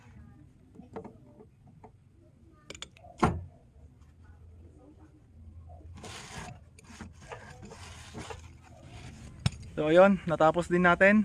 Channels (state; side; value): identical; both; correlation 1.00